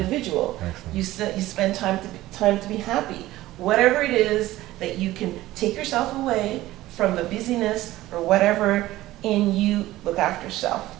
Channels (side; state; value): left; quieter; 16.4 dB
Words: You spend time to be happy. Whatever it is that you can take yourself away from the busyness or whatever, and you look after yourself.